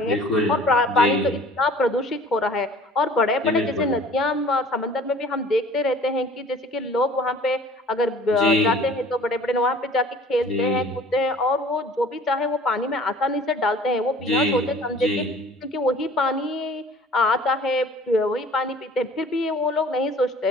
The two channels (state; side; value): normal; both; correlation 0.49